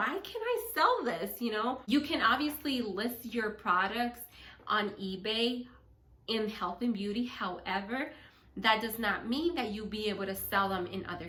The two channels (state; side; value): identical; both; correlation 1.00